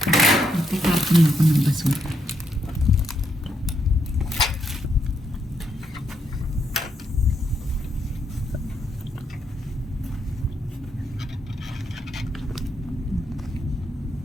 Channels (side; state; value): both; normal; correlation 0.78